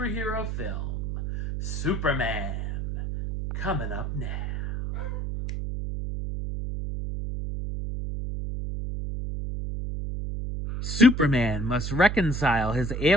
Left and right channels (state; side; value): noise; right; hum, 3 dB below the sound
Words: film, Superman, coming up now. Superman must reconcile his